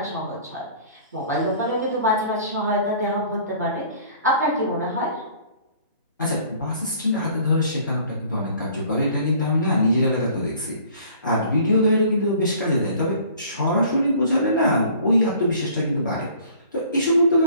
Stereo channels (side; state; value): both; inverted; correlation -0.52